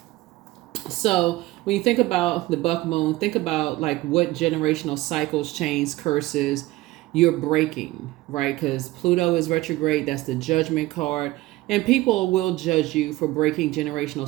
So when you think about the buck moon, think about like what generational cycles, chains, curses you're breaking, right? Because Pluto is retrograde. That's the judgment card. And people will judge you for breaking generational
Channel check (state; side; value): quieter; left; 18.5 dB